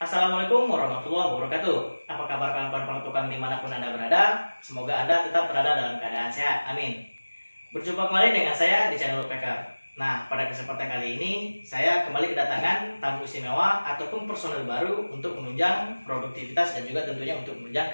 Assalamualaikum warahmatullahi wabarakatuh. Apa kabar kawan-kawan pertukang dimanapun Anda berada? Semoga Anda tetap berada dalam keadaan sehat. Amin. Berjumpa kembali dengan saya di channel Woodpecker. Nah, pada kesempatan kali ini saya kembali kedatangan tamu istimewa ataupun personel baru untuk menunjang produktivitas dan juga tentunya untuk menunjang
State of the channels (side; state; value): both; inverted; correlation -1.00